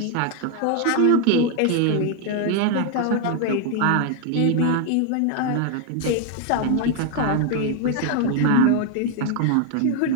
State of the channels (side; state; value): both; different; correlation 0.01